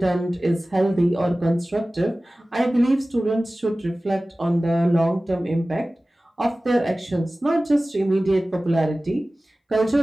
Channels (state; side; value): normal; both; correlation 0.97